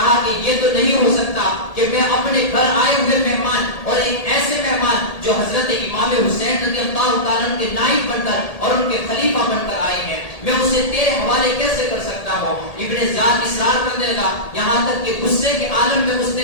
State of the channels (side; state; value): right; late; 1.8 ms